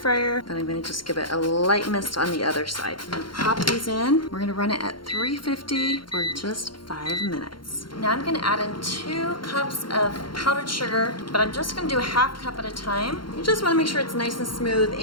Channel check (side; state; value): right; late; 0.73 ms